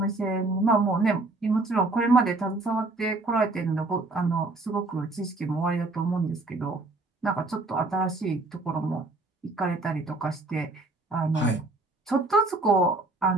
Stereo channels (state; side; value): quieter; left; 3.1 dB